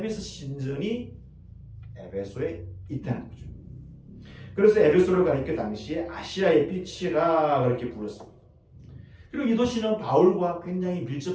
신전이 에베소에 있다는 거죠. 그래서 에베소를 가리켜 당시에 아시아의 빛이라 그렇게 불렀습니다. 그리고 이 도시는 바울과 굉장히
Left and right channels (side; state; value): both; identical; correlation 1.00